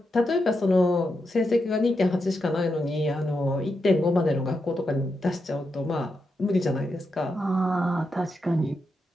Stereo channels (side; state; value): both; normal; correlation 0.85